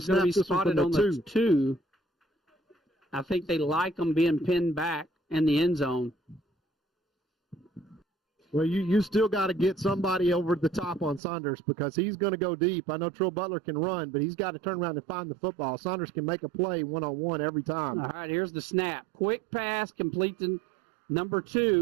snap this one from the 2. I think they like them being pinned back in the end zone. Well, you still got to get somebody over the top on Saunders because he's going to go deep. I know Trill Butler can run, but he's got to turn around and find the football. Saunders can make a play one-on-one every time. All right, here's the snap. Quick pass, complete to number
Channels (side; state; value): left; drops out; at 11.2 s